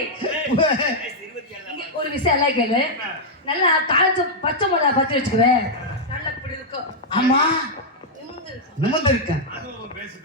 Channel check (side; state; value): both; normal; correlation -0.04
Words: ஒரு விஷயம் எல்லாம் கேளு. நல்லா காய்ச்ச பச்சை மிளகா பத்தி வச்சுக்குவேன். நல்லா இப்படி இருக்கும். ஆமா நிமிர்ந்து இருக்கேன்.